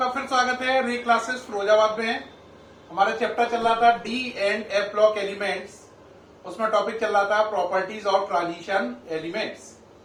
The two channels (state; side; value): identical; both; correlation 1.00